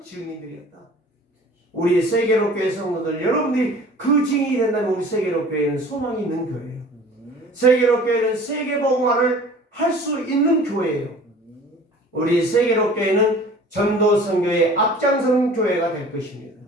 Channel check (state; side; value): normal; both; correlation 0.46